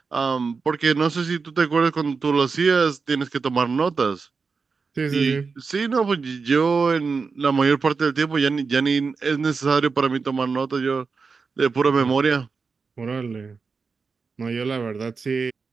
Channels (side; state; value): left; quieter; 4.9 dB